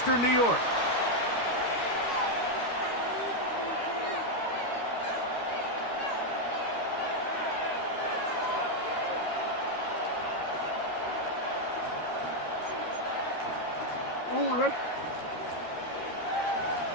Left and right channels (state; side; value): late; right; 13 ms